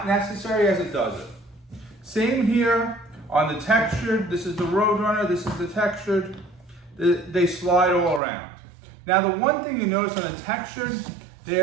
necessary as it does it. Same here on the textured. This is the RoadRunner, this is the textured. They slide all around. Now the one thing you notice on the textured,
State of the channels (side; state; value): left; drops out; at 8.2 s